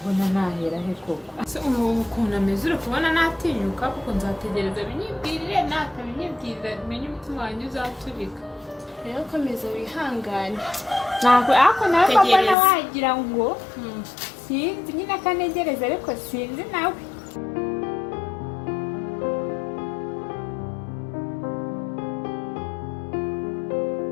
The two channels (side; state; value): right; drops out; at 12.6 s